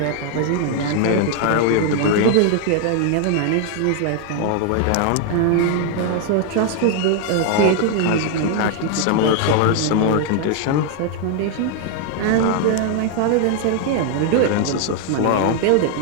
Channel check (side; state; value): both; different; correlation 0.00